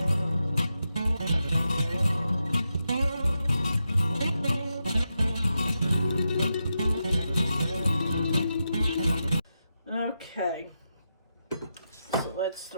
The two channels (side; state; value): both; inverted; correlation -0.87